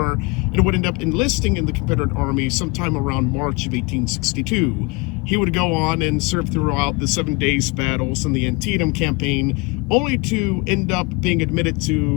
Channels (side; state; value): right; quieter; 27.1 dB